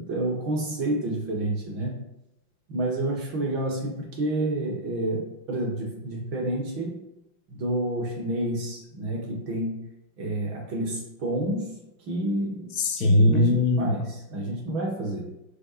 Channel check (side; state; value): left; late; 5.7 ms